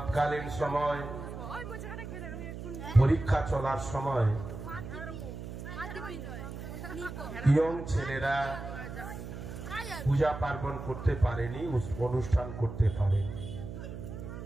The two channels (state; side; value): noise; right; hum, 9 dB below the sound